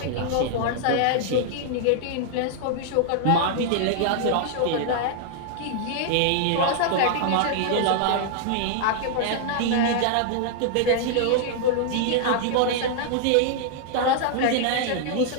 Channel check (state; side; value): different; both; correlation -0.01